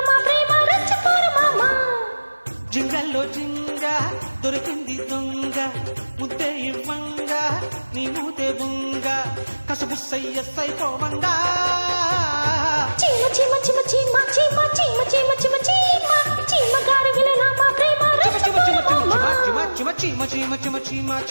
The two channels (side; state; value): both; inverted; correlation -1.00